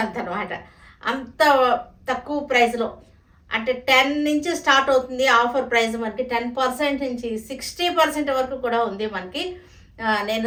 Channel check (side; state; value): both; identical; correlation 1.00